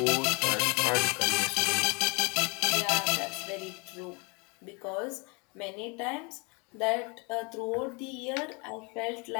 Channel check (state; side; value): quieter; right; 30.8 dB